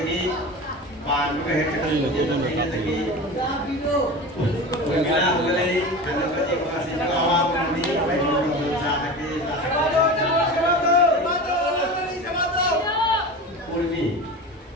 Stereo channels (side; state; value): both; normal; correlation 0.30